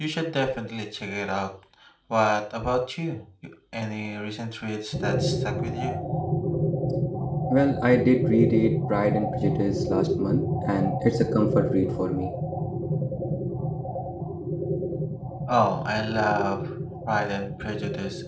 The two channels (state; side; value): identical; both; correlation 1.00